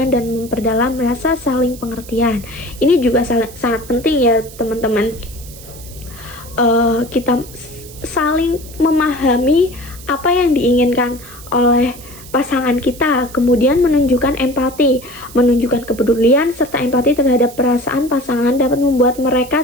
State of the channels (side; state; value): right; noise; hiss, 18 dB below the sound